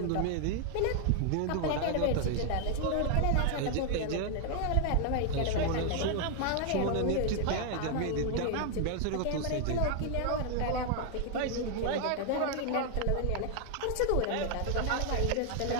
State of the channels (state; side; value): different; both; correlation 0.00